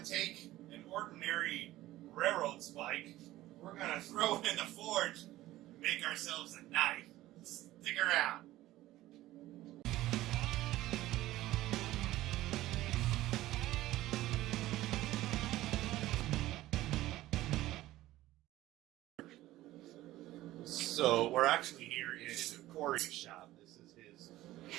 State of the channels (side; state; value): left; quieter; 16.0 dB